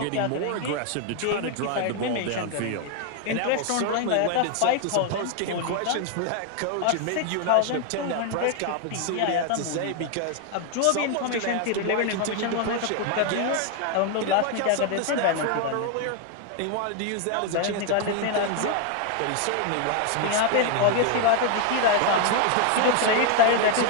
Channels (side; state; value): both; different; correlation 0.01